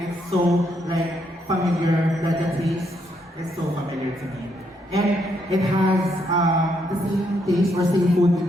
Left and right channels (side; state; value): both; normal; correlation 0.75